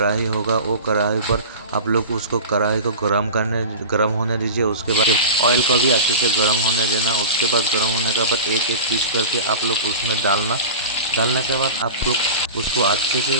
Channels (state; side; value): inverted; both; correlation -0.31